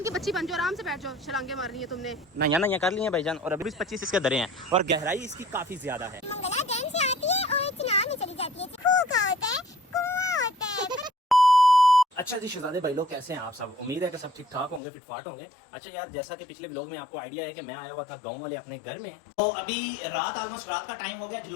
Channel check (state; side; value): drops out; right; at 14.8 s